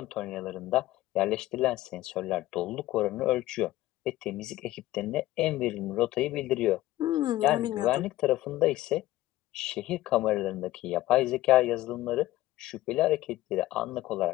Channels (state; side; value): quieter; right; 16.4 dB